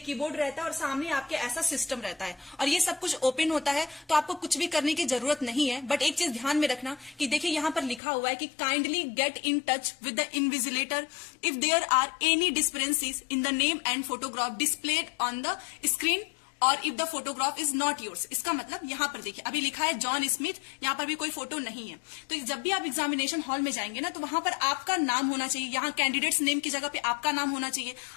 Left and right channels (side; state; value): right; drops out; at 8.0 s